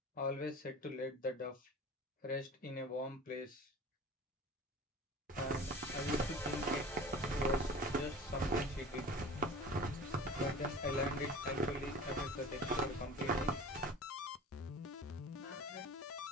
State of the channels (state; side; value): normal; both; correlation 0.39